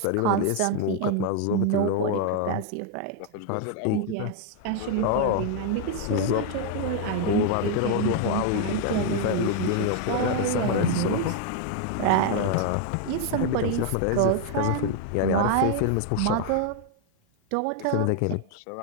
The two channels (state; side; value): different; both; correlation 0.01